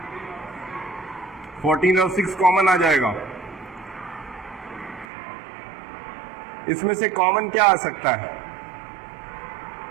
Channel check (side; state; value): left; drops out; at 5.1 s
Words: 14 और 6 कॉमन आ जाएगा। इसमें से कॉमन क्या आ सकता है,